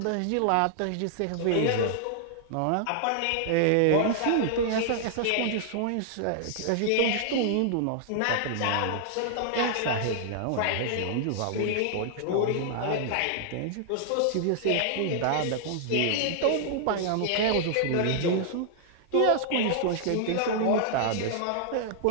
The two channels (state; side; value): different; both; correlation -0.01